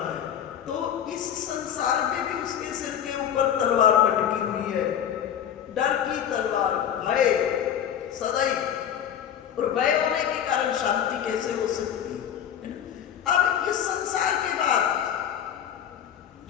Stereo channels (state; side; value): quieter; right; 9.4 dB